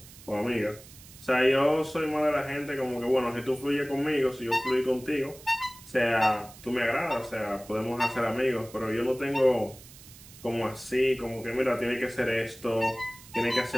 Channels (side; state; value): right; noise; hiss, 20 dB below the sound